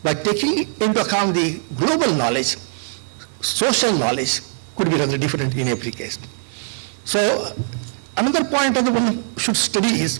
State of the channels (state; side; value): silent; left; digital silence